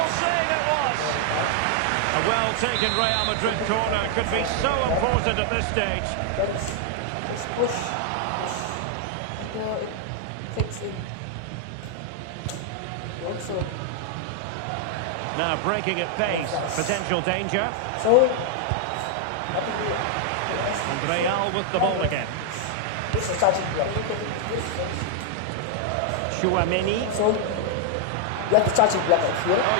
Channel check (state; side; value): different; both; correlation 0.00